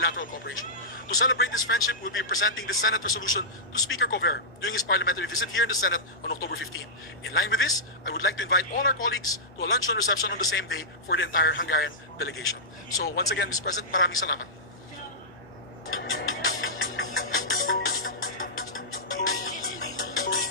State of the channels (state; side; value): normal; both; correlation -0.13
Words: cooperation. To celebrate this friendship, we'll be presenting the Senate resolution to Speaker Kover during his parliamentary visit here in the Senate on October 15. In line with this, I would like to invite all our colleagues to a luncheon reception on the same day for the entire Hungarian delegation. So once again, Mr. President, maraming salamat.